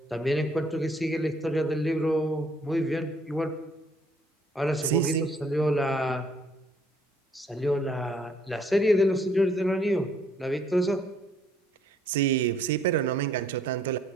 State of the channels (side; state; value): both; normal; correlation 0.63